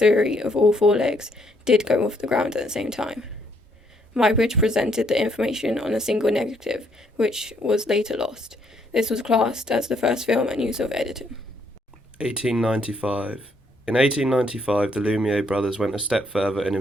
of all 4 legs did go off the ground at the same time. Muybridge presented the information on a single negative, which was later lost. This was classed as the first film and use of editing. 1895. In 1895, the Lumiere brothers went a step further and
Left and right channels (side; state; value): both; normal; correlation 0.71